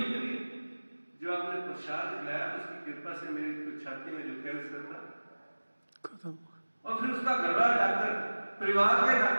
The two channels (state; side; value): inverted; both; correlation -1.00